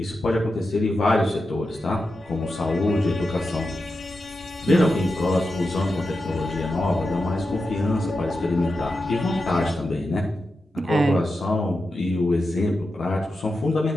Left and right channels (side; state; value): both; normal; correlation 0.89